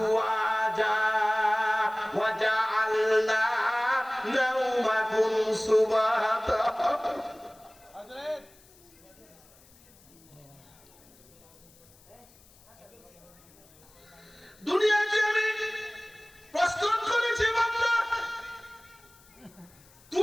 ওয়া জাআলনা নাওমাকুম সুবাতা। দুনিয়াকে আমি প্রস্তুত করেছি বান্দা,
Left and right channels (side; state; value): left; noise; hiss, 27 dB below the sound